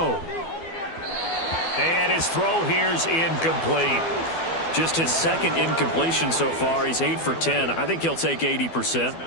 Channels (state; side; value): late; right; 12 ms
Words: And his throw here's incomplete. Just his 2nd incompletion so far. He's 8 for 10. I think he'll take